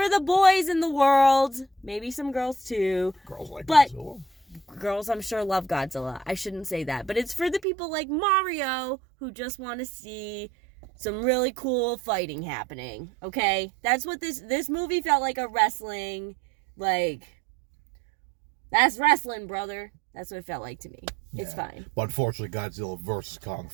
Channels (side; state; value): left; drops out; at 7.6 s